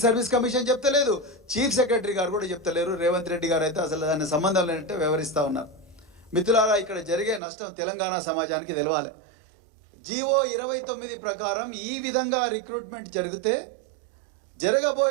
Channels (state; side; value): drops out; left; at 7.4 s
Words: సర్వీస్ కమిషన్ చెప్తలేదు, చీఫ్ సెక్రటరీ గారు కూడా చెప్తలేరు. రేవంత్ రెడ్డి గారు అయితే అసలు దాని సంబంధం లేనట్టే వ్యవహరిస్తూ ఉన్నారు. మిత్రులారా, ఇక్కడ జరిగే నష్టం తెలంగాణ సమాజానికి తెలవాలి. జీవో 29 ప్రకారం ఈ విధంగా రిక్రూట్మెంట్ జరిగితే